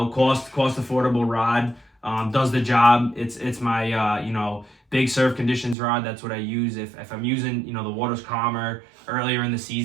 affordable rod. Does the job. It's my big surf conditions rod. That's what I use if I'm using the water's calmer earlier in the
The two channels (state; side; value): drops out; left; at 5.8 s